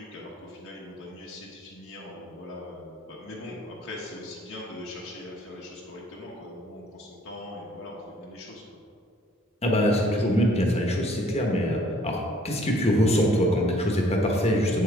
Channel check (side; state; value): both; normal; correlation 0.60